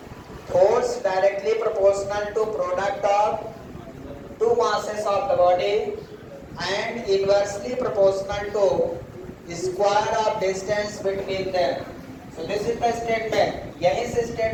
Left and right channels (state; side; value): identical; both; correlation 1.00